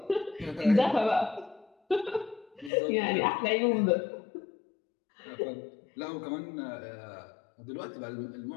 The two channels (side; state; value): right; drops out; at 2.7 s